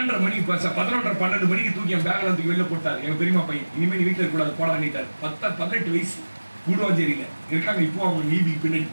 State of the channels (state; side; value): inverted; both; correlation -1.00